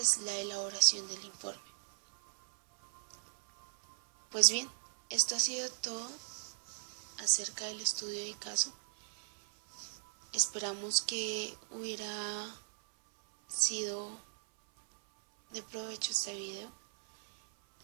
la elaboración del informe. Pues bien, esto ha sido todo acerca del estudio de caso. Esperamos que hubiera sido de provecho este video.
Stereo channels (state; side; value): silent; left; 53 dB below the other